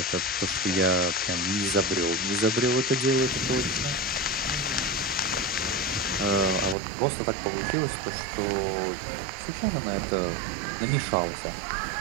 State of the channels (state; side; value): drops out; left; at 6.8 s